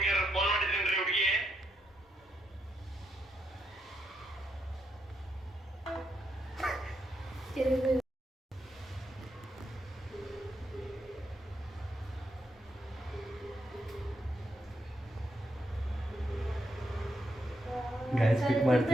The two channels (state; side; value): normal; both; correlation 0.80